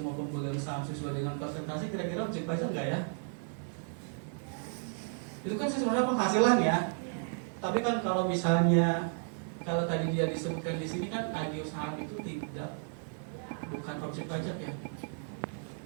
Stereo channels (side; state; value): left; silent; 55 dB below the other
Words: pemegang saham sesuai dengan persentase, kira-kira objek pajak nggak ya? Itu kan sebenarnya penghasilan ya. Tapi kan kalau misalnya kalau tadi dia disebutkan di sini kan agio saham itu bukan objek pajak ya,